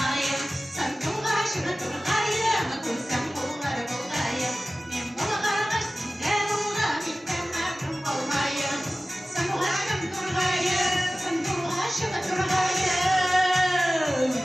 Sen tuğaşıp turgayım, kursam kullara bulayım. Kim bulgağa sinde bulgar, inden mahrum olmayım. Sen tuğaşıp turgayım, sen tuğaşıp turgayım.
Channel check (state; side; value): normal; both; correlation 0.97